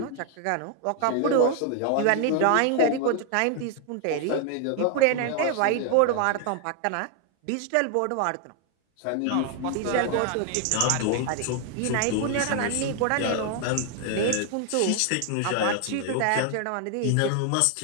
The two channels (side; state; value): both; different; correlation 0.00